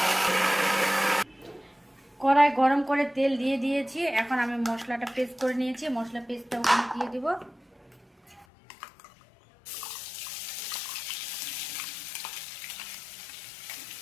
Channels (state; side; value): drops out; right; at 8.5 s